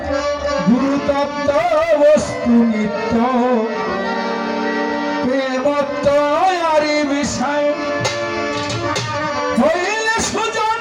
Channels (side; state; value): both; identical; correlation 1.00